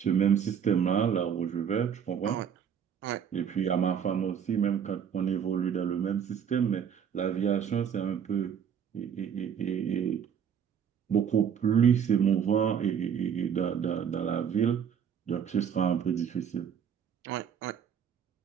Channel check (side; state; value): left; quieter; 8.0 dB